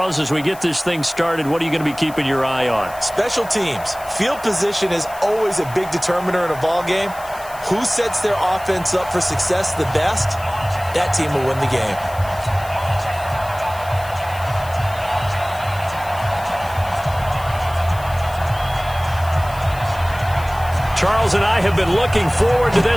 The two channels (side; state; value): left; noise; hiss, 19 dB below the sound